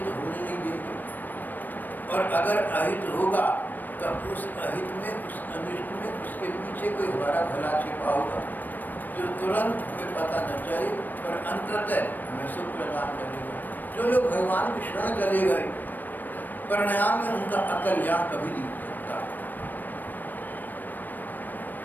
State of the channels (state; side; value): late; right; 0.089 ms